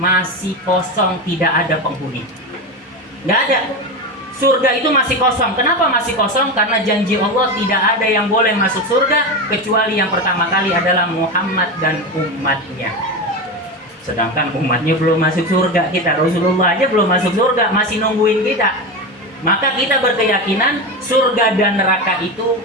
kosong, tidak ada penghuni. Nggak ada. surga itu masih kosong. Kenapa masih kosong? Karena janji Allah tidak ada yang boleh masuk surga kecuali yang pertama kali adalah Muhammad dan umatnya. Sedangkan umatnya belum masuk surga, kita Rasulullah aja belum masuk surga, masih nungguin kita. Maka kita berkeyakinan surga dan neraka itu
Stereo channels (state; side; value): normal; both; correlation 0.19